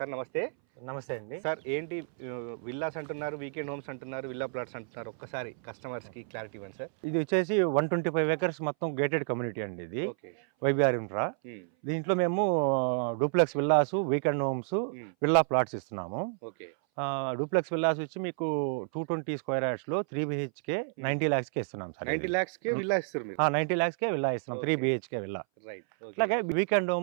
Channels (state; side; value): silent; left; 58 dB below the other